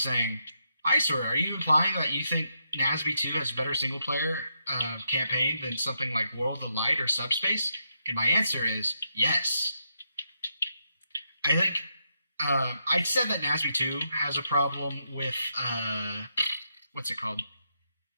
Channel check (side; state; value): both; inverted; correlation -0.81